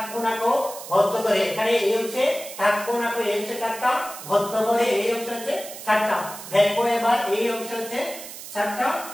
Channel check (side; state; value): right; noise; hiss, 12 dB below the sound